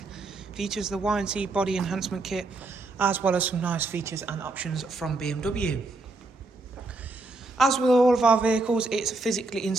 features the Y&C body enhancement kit, as well as some nice features and options from BMW. As with all of our vehicles, it's physically in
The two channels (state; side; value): quieter; left; 3.2 dB